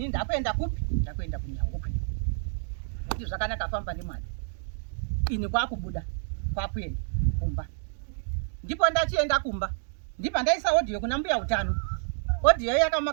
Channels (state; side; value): silent; left; digital silence